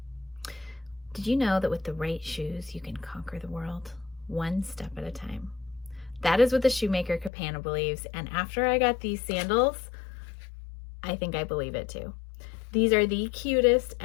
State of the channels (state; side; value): drops out; right; at 7.3 s